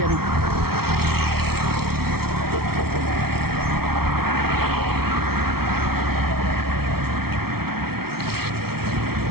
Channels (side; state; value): left; late; 0.94 ms